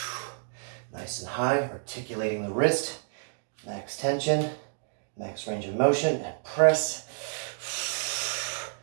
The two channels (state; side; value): silent; left; digital silence